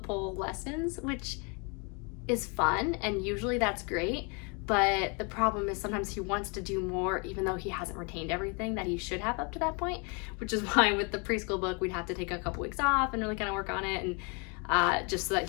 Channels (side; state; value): right; quieter; 33.5 dB